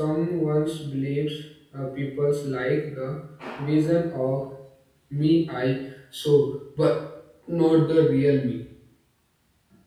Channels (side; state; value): both; identical; correlation 1.00